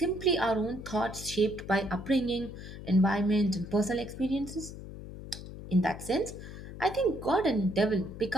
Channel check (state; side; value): noise; left; hum, 12 dB below the sound